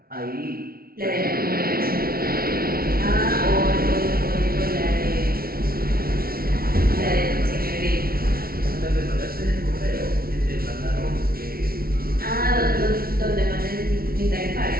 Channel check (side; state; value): left; late; 0.44 ms